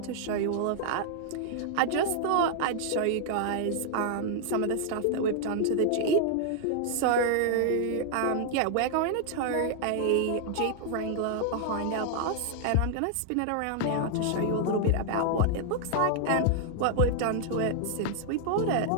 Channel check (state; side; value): different; both; correlation -0.01